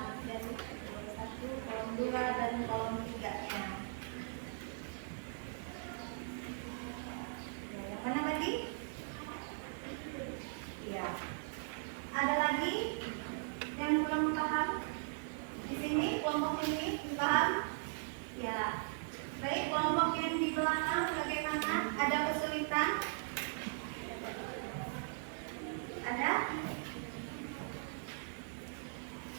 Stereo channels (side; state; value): left; silent; digital silence